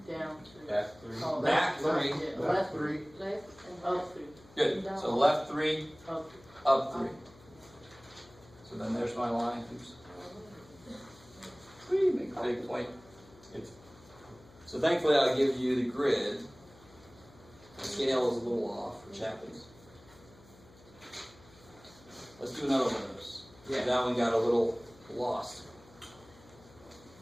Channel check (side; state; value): left; noise; hum, 24 dB below the sound